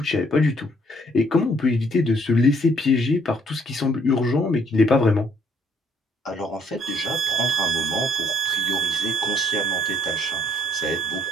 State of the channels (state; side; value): normal; both; correlation 0.66